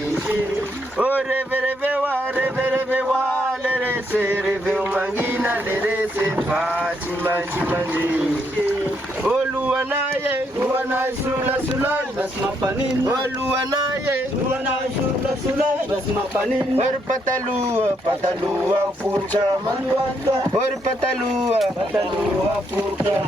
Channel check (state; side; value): normal; both; correlation 0.75